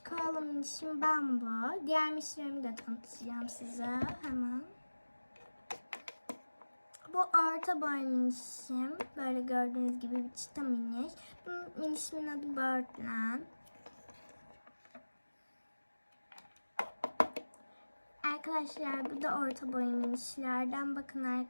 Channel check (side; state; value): both; inverted; correlation -1.00